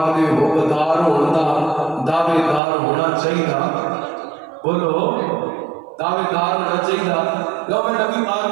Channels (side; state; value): left; drops out; at 2.6 s